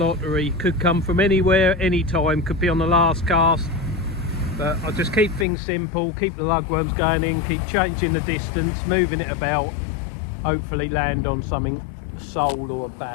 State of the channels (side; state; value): right; drops out; at 5.5 s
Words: Could come from anywhere, anytime, could be on the last cast. But I'll just keep things simple, keep the lugworms going in, keep changing the distance, moving it about, hopefully land on something sole or a